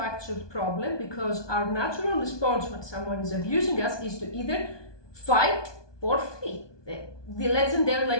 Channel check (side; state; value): right; late; 1.2 ms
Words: problem because our natural response when someone is abusing us is to either fight or flee. The